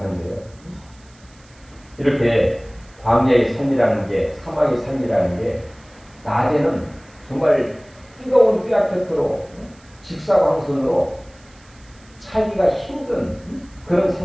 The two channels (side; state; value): right; noise; hiss, 28 dB below the sound